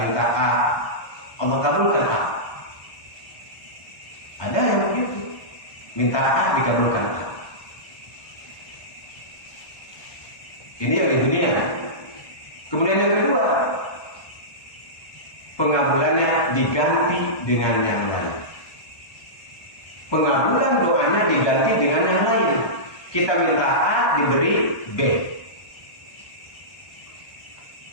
minta A, Allah kabulkan A. Ada yang begitu, minta A dikabulkan A. Ini yang di dunia. Kemudian yang kedua, pengabulannya diganti dengan yang lain. Pengabulan doanya diganti dengan yang lain. Kita minta A diberi B.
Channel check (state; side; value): late; right; 1.2 ms